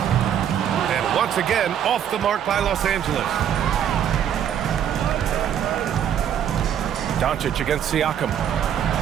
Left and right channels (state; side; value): quieter; left; 9.4 dB